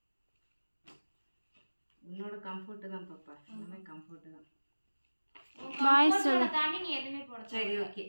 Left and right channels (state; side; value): inverted; both; correlation -1.00